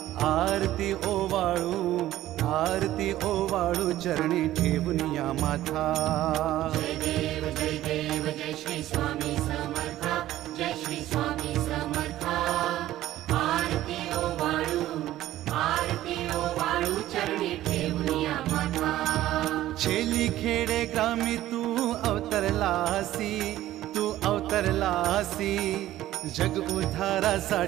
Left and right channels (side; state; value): left; quieter; 14.3 dB